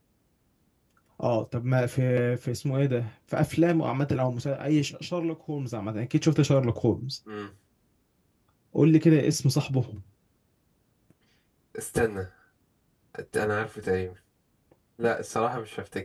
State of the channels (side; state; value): both; identical; correlation 1.00